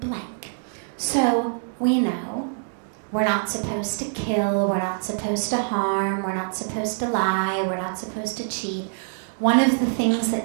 So we know we're not supposed to kill, we're not supposed to harm, we're not supposed to lie, we're not supposed to cheat. One of the things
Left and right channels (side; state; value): left; silent; digital silence